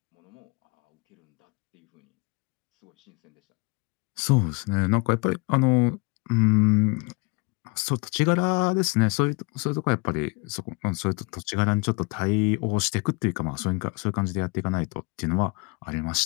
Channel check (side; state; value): right; quieter; 29.5 dB